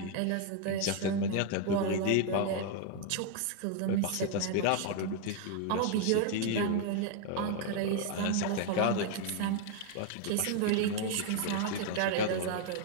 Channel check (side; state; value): both; different; correlation 0.00